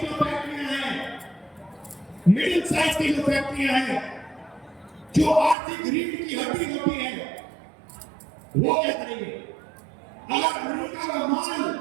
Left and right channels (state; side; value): drops out; left; at 5.6 s